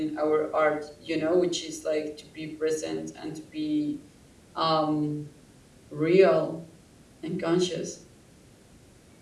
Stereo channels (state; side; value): identical; both; correlation 1.00